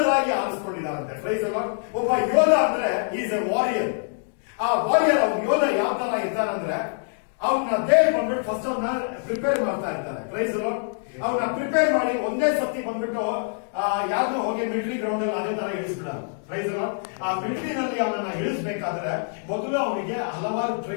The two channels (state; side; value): silent; right; digital silence